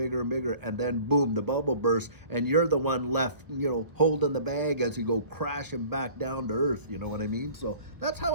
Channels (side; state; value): left; late; 1.2 ms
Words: and bigger. And then, boom, the bubble bursts and you're the one left, holding the bag as you go crashing back down to earth. You know what I mean? So that's how